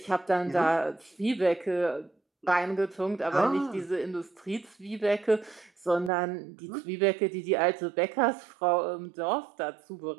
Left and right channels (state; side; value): drops out; left; at 6.1 s